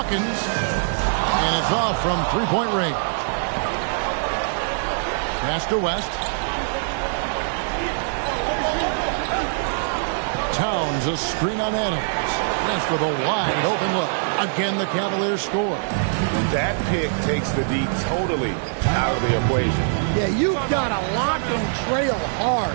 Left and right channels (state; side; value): silent; left; digital silence